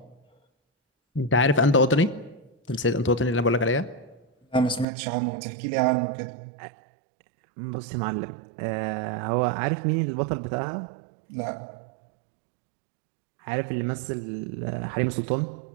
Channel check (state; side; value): drops out; left; at 4.9 s